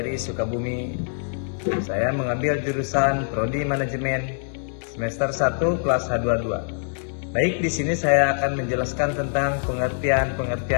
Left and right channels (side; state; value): right; silent; digital silence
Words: Sukabumi. Saya mengambil jurusan Prodi Manajemen semester 1 kelas H22. Baik, di sini saya akan menjelaskan tentang